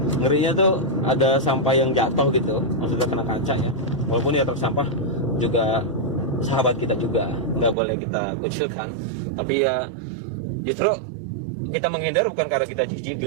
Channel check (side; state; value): left; drops out; at 7.8 s